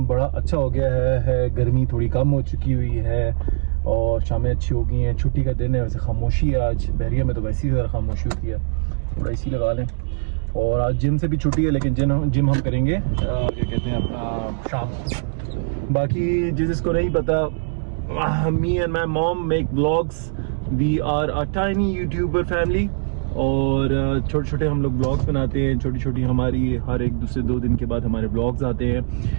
बड़ा अच्छा हो गया है, गर्मी थोड़ी कम हो चुकी हुई है और शामें अच्छी हो गई हैं। छुट्टी का दिन है, वैसे खामोशी है आज। बहरिया में तो वैसे ही ज़रा खामोशी होती है, थोड़ा इसी लगा लें। और आज जिम से भी छुट्टी है, लेकिन जिम हम करेंगे क्या कहते हैं अपना शाम। बाकी जिसको नहीं पता, me and my mom make vlogs. We are a tiny YouTuber family और छोटे छोटे हम लोग ब्लॉग्स बनाते हैं। छोटी छोटी हमारी हर एक दूसरे 2 दिन के बाद हमारे ब्लॉग्स आते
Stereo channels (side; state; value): left; silent; digital silence